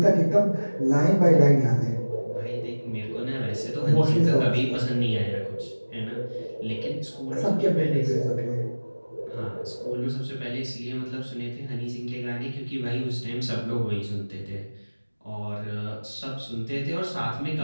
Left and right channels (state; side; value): inverted; both; correlation -1.00